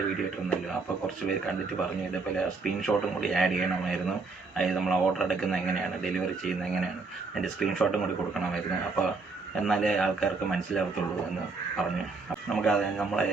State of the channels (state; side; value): quieter; left; 4.1 dB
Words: വീഡിയോ ഇട്ടിരുന്നല്ലോ. അപ്പോൾ കുറച്ച് പേര് കണ്ടിട്ട് പറഞ്ഞു ഇതേപോലെ സ്ക്രീൻഷോട്ടും കൂടി ആഡ് ചെയ്യണമായിരുന്നു. അതായത് നമ്മൾ ഓർഡർ എടുക്കുന്നത് എങ്ങനെയാണ്, ഡെലിവറി ചെയ്യുന്നത് എങ്ങനെയാണ്, അതിൻ്റെ സ്ക്രീൻഷോട്ടും കൂടി കൊടുക്കണമായിരുന്നു. അപ്പോൾ എന്നാലേ ആൾക്കാർക്ക് മനസ്സിലാവത്തുള്ളൂ എന്ന് പറഞ്ഞു. നമുക്ക് നമ്മൾ